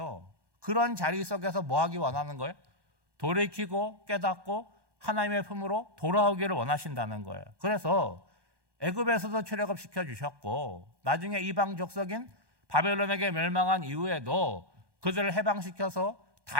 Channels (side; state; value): left; late; 1.2 ms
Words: 그런 자리 속에서 뭐 하기 원하는 거예요? 돌이키고 깨닫고 하나님의 품으로 돌아오기를 원하신다는 거예요. 그래서 애굽에서도 출애굽시켜 주셨고 나중에 이방 족속인 바벨론에게 멸망한 이후에도 그들을 해방시켜서